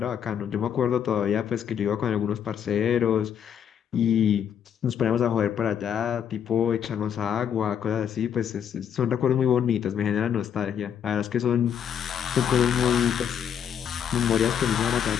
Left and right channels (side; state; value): right; quieter; 8.5 dB